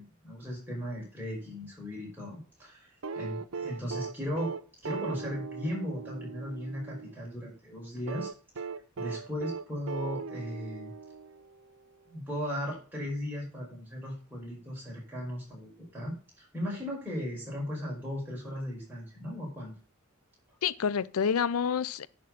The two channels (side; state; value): both; normal; correlation 0.26